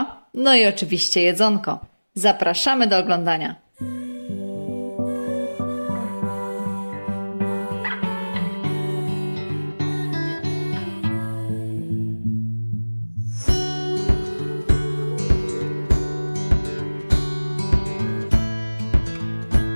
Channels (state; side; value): inverted; both; correlation -1.00